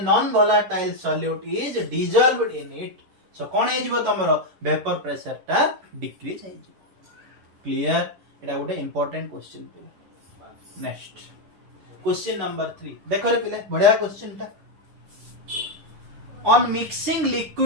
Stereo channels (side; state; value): left; late; 10 ms